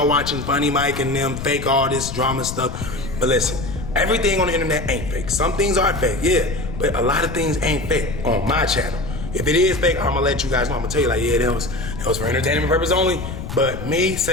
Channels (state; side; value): noise; left; rumble, 8 dB below the sound